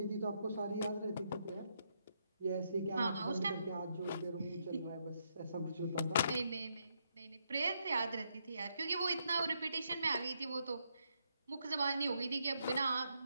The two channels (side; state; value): both; inverted; correlation -0.78